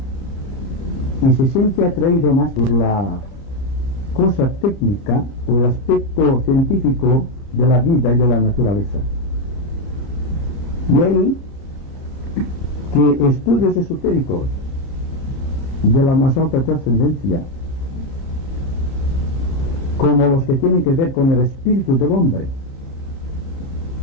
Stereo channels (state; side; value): late; right; 29 ms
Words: y se siente atraído más por la cosa técnica o el aspecto científico de la vida y de la naturaleza. De ahí que estudios esotéricos de la más alta trascendencia, como los que tienen que ver con el espíritu del hombre,